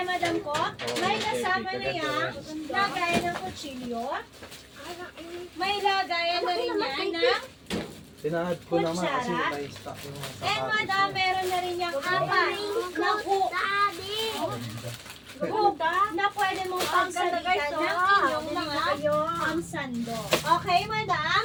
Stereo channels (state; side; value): identical; both; correlation 1.00